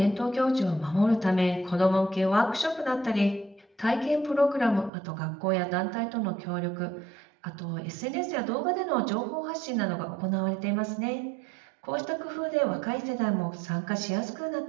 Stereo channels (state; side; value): drops out; left; at 4.9 s